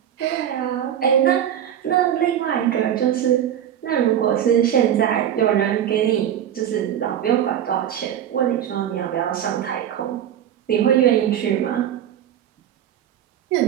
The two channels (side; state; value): left; quieter; 10.2 dB